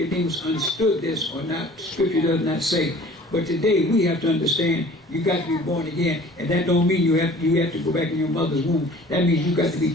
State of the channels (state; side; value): normal; both; correlation 0.48